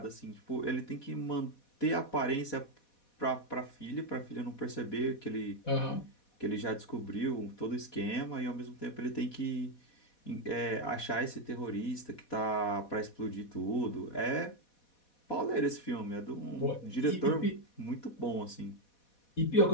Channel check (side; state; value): right; late; 4.1 ms